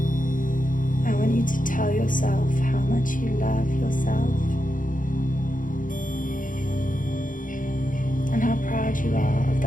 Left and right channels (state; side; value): late; right; 0.39 ms